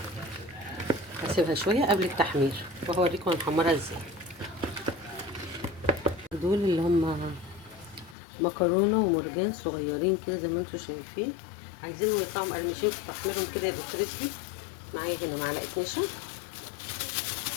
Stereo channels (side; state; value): right; drops out; at 8.2 s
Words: هسيبها شويه قبل التحمير وهوريكم هنحمرها ازاي. دول اللي هم مكرونه ومرجان صغيرين كده زي ما انتم شايفين، عايزينهم يطلعوا مقرمشين في تحميرهم كده يبقوا كريسبي. معايا هنا معلقه نشا،